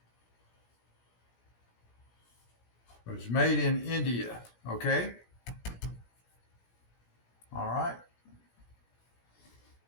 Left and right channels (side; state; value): right; late; 17 ms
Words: It was made in India, okay? All right.